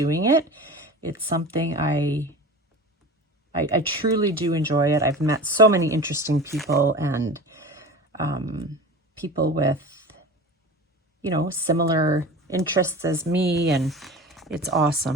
it. It's something I truly do enjoy it. I've met so many interesting people, and people with, you know, similar interests as me, and it's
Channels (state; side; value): normal; both; correlation 0.34